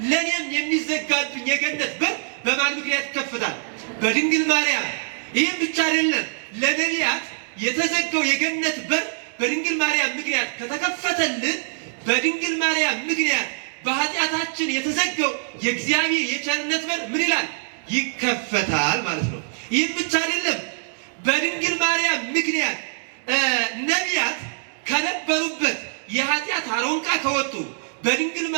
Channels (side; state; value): left; silent; digital silence